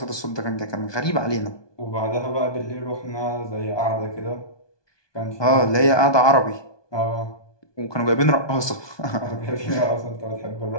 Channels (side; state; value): right; late; 1.2 ms